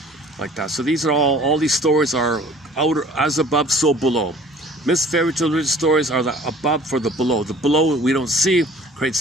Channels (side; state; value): both; normal; correlation 0.50